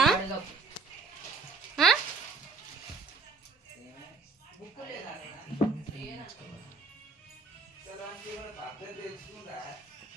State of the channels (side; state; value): left; quieter; 4.3 dB